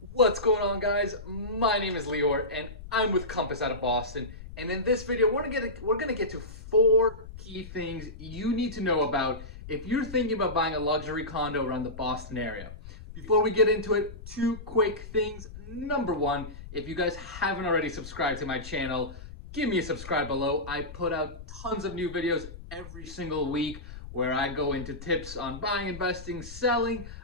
What's going on, guys? My name is Lior and I'm with Compass out of Boston, and in this video we're gonna get to 4 key things you need to know about if you're thinking about buying a luxury condo around the Boston area. Before we get into it, 2 quick things. Number 1, if you guys haven't already subscribed to my channel, give me a subscribe below. I put out tons of new videos every single week where I go into tips on buying, investing, selling.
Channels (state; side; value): noise; left; rumble, 13 dB below the sound